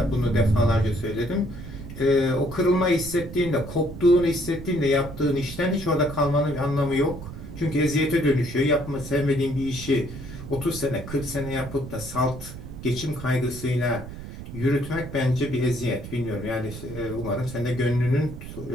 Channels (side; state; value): right; noise; rumble, 11 dB below the sound